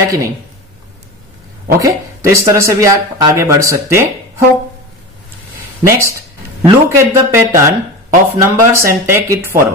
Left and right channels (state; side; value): normal; both; correlation 0.28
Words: कि नहीं। ओके, तो इस तरह से भी आप आगे बढ़ सकते हो। Next, look at the pattern of numbers and take it